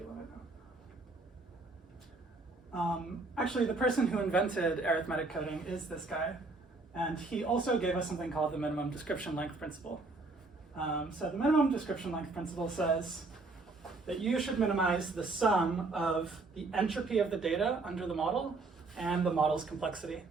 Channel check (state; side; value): quieter; left; 3.5 dB